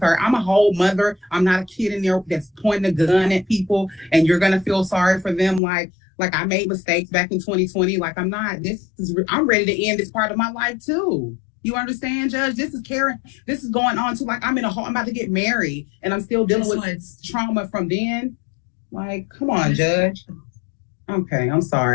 sir. I'm a whole mother. I'm not a kid in there that's pointing a gun at people, and you're going to feel sorry for them like I made mistakes back in 2020. I'm not. I'm ready to end this part of my life too. You understand, Judge? This is Karen. This is going on too. I'm about to get married, and I'm still dealing with trauma from then. Come on, Judge. Okay, I'm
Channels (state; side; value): drops out; right; at 5.6 s